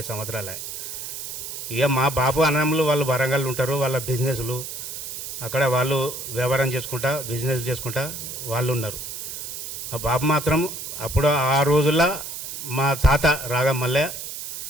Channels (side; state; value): right; noise; hiss, 8 dB below the sound